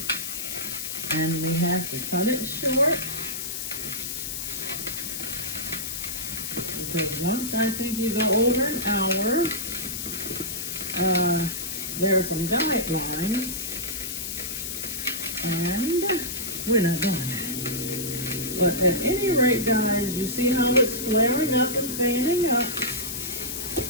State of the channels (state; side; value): noise; left; hiss, 5 dB below the sound